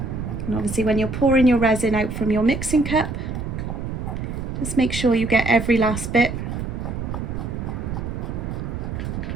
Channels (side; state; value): right; noise; rumble, 5 dB below the sound